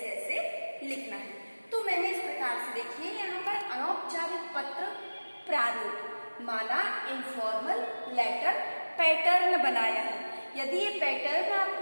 ऐसे लिखना है। तो मैंने इस प्रकार से देखिए यहाँ पर अनौपचारिक पत्र प्रारूप माना इनफॉर्मल लेटर पैटर्न बनाया है। यदि ये पैटर्न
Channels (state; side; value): inverted; both; correlation -1.00